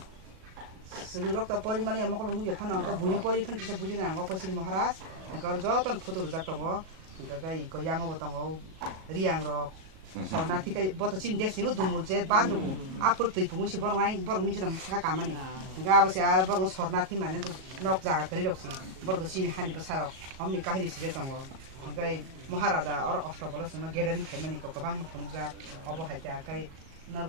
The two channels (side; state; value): left; late; 37 ms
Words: 스르럭도 버리만에 먹을 누게 파는 거 문이 버리 판티서 부지는 안 갖고 싫으면 하라. 그거 어르저 또 포도로 잡던 거. 그러니까 이거 양어 보던 거 리앙으로 서나티가 뭐또 진 됐으니까 동물제 반으로 앞으로 또 이쁜 것이 버렁아이 버렁 미지랑 차가 가만히 그러니까 아버지 알 버렁 서나티만 해도 넉자가 그리 없이 버렁도 신이 하니 버사로 엄니 까히리 시겠던 거 그러니까 뭐하라다 어러 어스터벌었으면 게르는 개만이니까 그방 뭐 보는자 어버 할때 아까